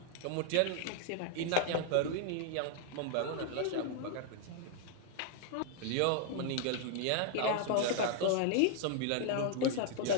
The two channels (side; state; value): both; different; correlation 0.00